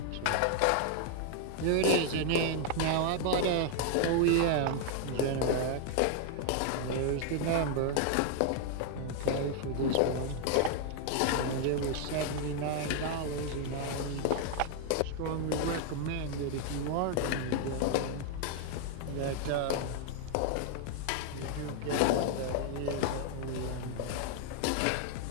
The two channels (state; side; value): different; both; correlation 0.00